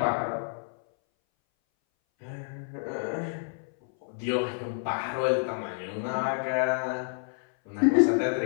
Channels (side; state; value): right; silent; 59 dB below the other